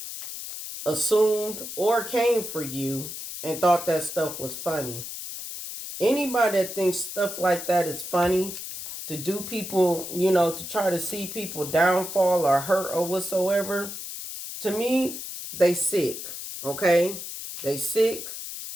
assumed or came for you and thought that stuff was funny. Anybody that thinks stuff like that is funny, to do people, to try to see people downfall or hurt or whatsoever, to me, they sick. Okay? They sick.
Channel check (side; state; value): left; noise; hiss, 8 dB below the sound